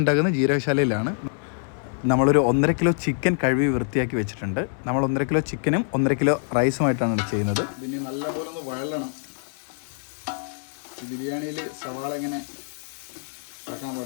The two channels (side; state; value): right; silent; digital silence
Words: ഉണ്ടാക്കുന്നത് ജീരകശാലയിലാണ്. നമ്മളൊരു 1.5 കിലോ ചിക്കൻ കഴുകി വൃത്തിയാക്കി വെച്ചിട്ടുണ്ട്. നമ്മൾ 1.5 കിലോ ചിക്കനും 1.5 കിലോ റൈസുമായിട്ടാണ് ചെയ്യുന്നത്. പിന്നെ നല്ലപോലെ ഒന്ന് വഴലണം. ബിരിയാണിയിൽ സവാള ഇങ്ങനെ ഇറക്കാൻ